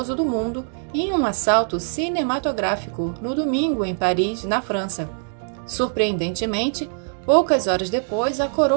do mundo em um assalto cinematográfico no domingo em Paris, na França. Surpreendentemente, poucas horas depois, a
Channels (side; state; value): left; silent; 61 dB below the other